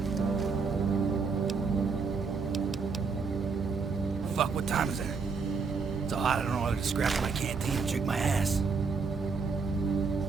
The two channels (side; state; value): left; quieter; 5.0 dB